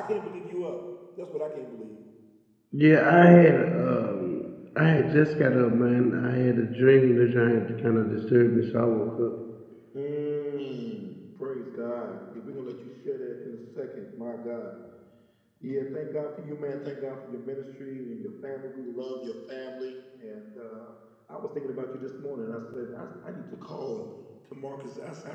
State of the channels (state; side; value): identical; both; correlation 1.00